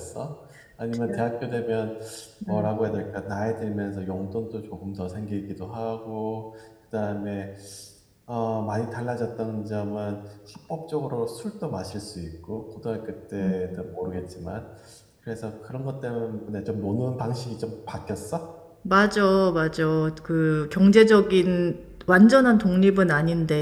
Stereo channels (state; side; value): identical; both; correlation 1.00